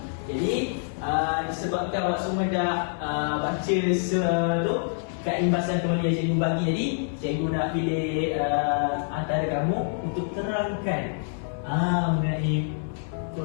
Jadi, disebabkan awak semua dah baca tu kat imbasan teori yang cikgu bagi tadi, cikgu nak pilih antara kamu untuk terangkan mengenai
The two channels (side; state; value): right; silent; 61 dB below the other